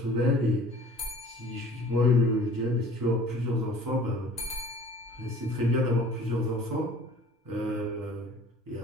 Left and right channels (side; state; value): both; normal; correlation 0.48